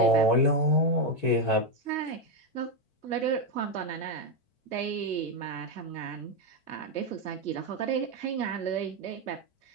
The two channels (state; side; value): late; right; 4.5 ms